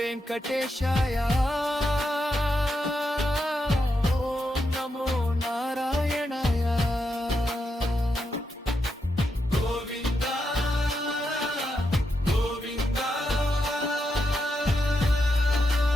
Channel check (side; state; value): both; normal; correlation 0.84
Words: వెంకటేశాయ ఓం నమో నారాయణాయ గోవింద గోవింద